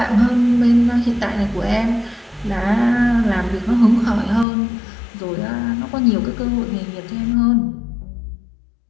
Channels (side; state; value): right; drops out; at 4.5 s